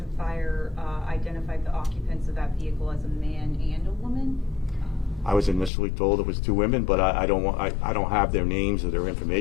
and Fire identified the occupants of that vehicle as a man and a woman. I was initially told it was 2 women, but I don't have their names or their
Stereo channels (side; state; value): right; drops out; at 5.7 s